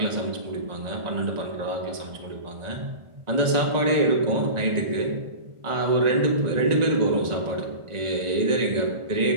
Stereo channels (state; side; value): late; left; 1.4 ms